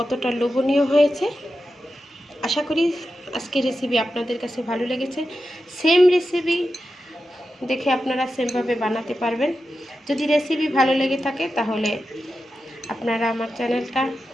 লোভনীয় হয়েছে। আশা করি আজকের রেসিপি আপনাদের কাছে ভালো লেগেছে। সেম রেসিপি দেখে আপনারা সেমভাবে বানাতে পারবেন। যদি রেসিপি ভালো লেগে থাকে তাহলে আপনারা আমার চ্যানেলটা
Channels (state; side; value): normal; both; correlation 0.91